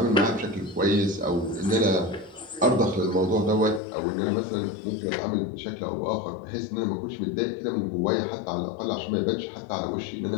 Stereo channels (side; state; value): right; drops out; at 3.8 s